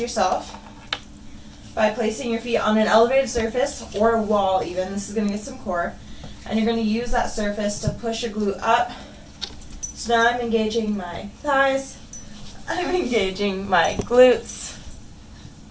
yourself by placing your feet on an elevated surface or a wall even. This is going to get some core. And you're going to use that surface to push a glute up. So now I'm engaging my thighs, I'm engaging my glutes,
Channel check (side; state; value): both; identical; correlation 1.00